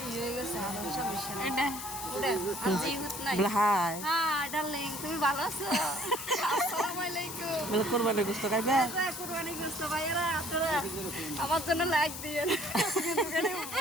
হয়ে গেছে আর সমস্যা নেই এটা উড়ে আজি হুত নাই হাই হ্যাঁ ডার্লিং তুমি ভালো আছো আসসালামু আলাইকুম বলে কোরবানি গোশত খাইবে কুরবানি গোশত ভাইরা আপনারা আমার জন্য লাইক দিয়েন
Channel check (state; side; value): noise; left; hiss, 8 dB below the sound